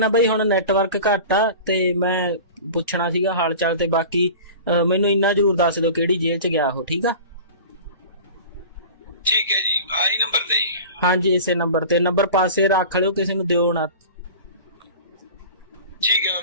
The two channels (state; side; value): inverted; both; correlation -0.37